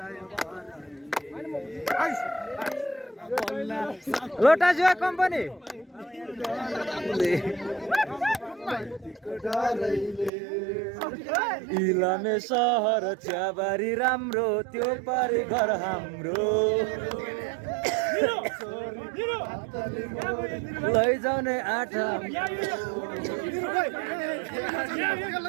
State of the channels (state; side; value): drops out; left; at 10.3 s